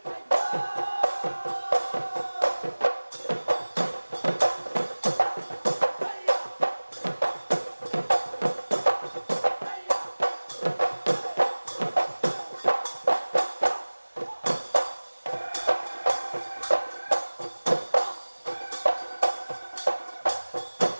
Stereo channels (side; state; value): both; inverted; correlation -1.00